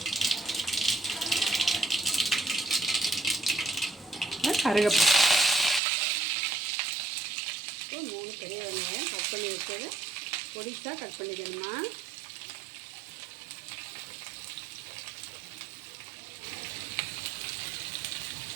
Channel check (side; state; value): left; drops out; at 5.8 s